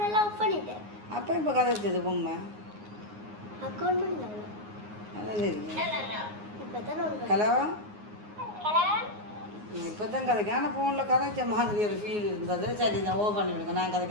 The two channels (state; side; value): late; left; 9.6 ms